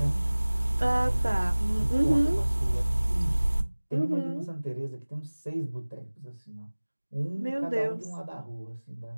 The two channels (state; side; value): inverted; both; correlation -1.00